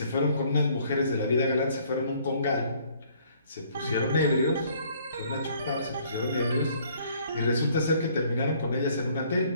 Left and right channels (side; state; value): both; inverted; correlation -0.61